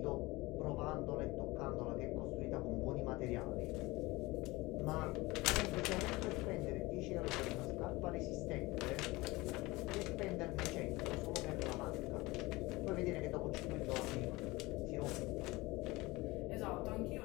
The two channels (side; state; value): right; quieter; 21.6 dB